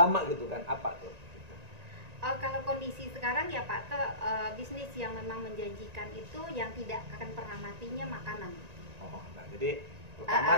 gitu kan? Apa tuh? Kalau kondisi sekarang ya Pak To, bisnis yang memang menjanjikan itu yang tidak akan pernah matinya makanan. Oh, nah jadi pertama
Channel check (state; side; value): late; left; 1.9 ms